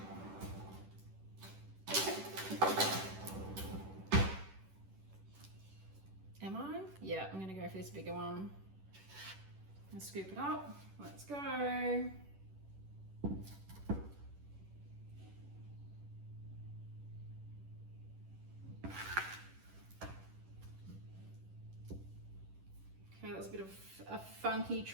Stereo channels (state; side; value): late; left; 10 ms